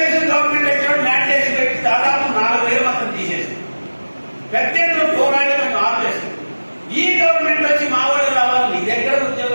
గవర్నమెంట్ ఎక్కడ మ్యాండేట్ పెట్టి దాదాపు 4,000 మందిని తీసేసింది. పెద్ద ఎత్తున పోరాడి మనం ఆపేస్తుంది. ఈ గవర్నమెంట్ వచ్చి మా వాళ్ళు రావాలి, నీ దగ్గర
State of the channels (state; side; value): inverted; both; correlation -1.00